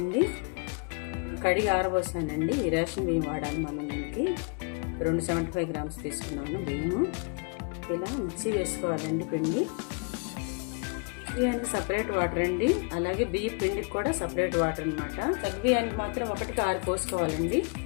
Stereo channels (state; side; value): quieter; right; 36.3 dB